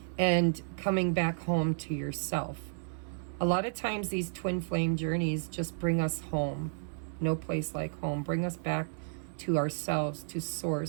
and coming back home to yourself. A lot of times these twin flame journeys just bring us home. No place like home. Bring us back to ourselves, to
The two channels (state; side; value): silent; left; 56 dB below the other